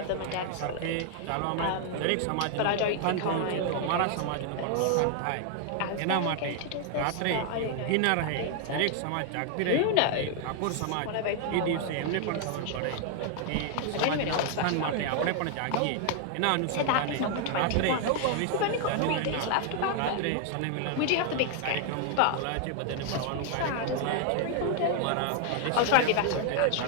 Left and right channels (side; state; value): both; different; correlation 0.00